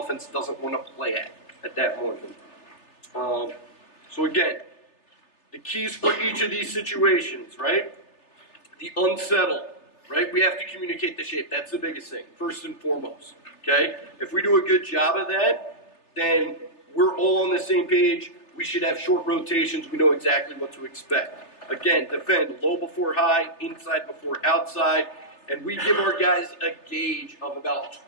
doesn't want to play at that moment. So again, the keys for each of these situations, right? The unsettled, right? We have to communicate the shape. That's the biggest thing, first and foremost, okay? If we do a good job of that, then we're all on the same page. We should have short rotations. We know exactly what to expect. Again, defend low before high, inside before outside, and we give our guys a gauge of about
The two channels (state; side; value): late; right; 3.3 ms